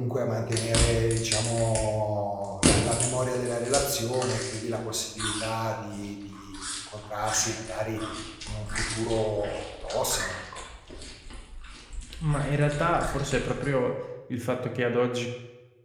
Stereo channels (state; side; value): identical; both; correlation 1.00